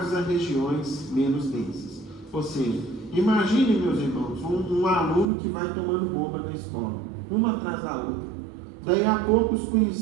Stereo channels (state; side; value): drops out; left; at 5.3 s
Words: a regiões menos densas. Ou seja, imagine, meus irmãos, um aluno que vai tomando bomba na escola, uma atrás da outra. Daí a pouco os